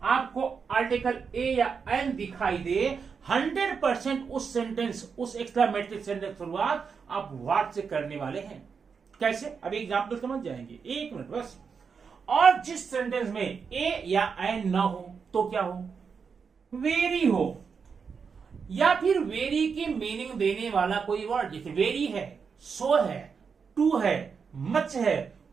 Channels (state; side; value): quieter; left; 5.9 dB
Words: आपको आर्टिकल ए या एन दिखाई दे, 100% उस सेंटेंस, उस एक्सक्लेमेटरी सेंटेंस शुरुआत आप व्हाट से करने वाले हैं। कैसे, अभी एग्जाम्पल समझ जाएंगे, एक मिनट बस। और जिस सेंटेंस में ए या एन ना हो तो क्या हो, वेरी हो, या फिर वेरी की मीनिंग देने वाला कोई वर्ड, जैसे वेरी है, सो है, टू है, मच है,